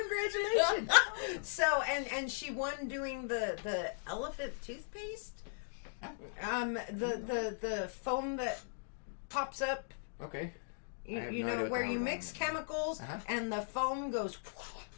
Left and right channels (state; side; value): silent; right; digital silence